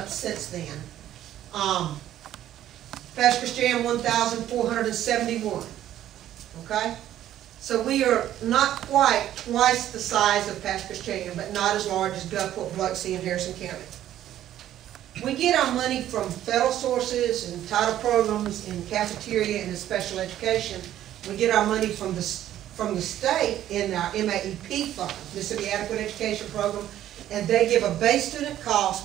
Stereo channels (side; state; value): left; quieter; 12.2 dB